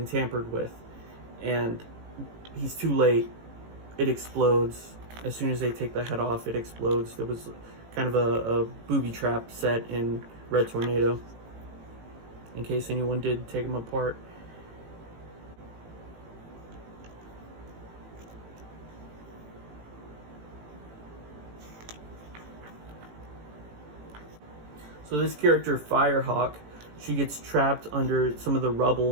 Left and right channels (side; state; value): left; late; 18 ms